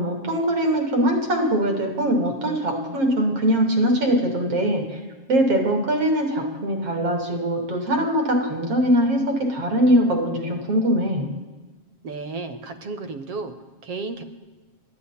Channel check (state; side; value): late; left; 7.5 ms